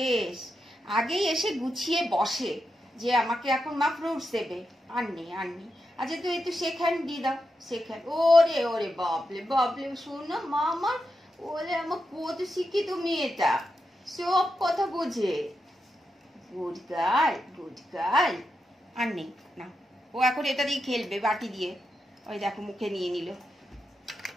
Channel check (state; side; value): normal; both; correlation 0.87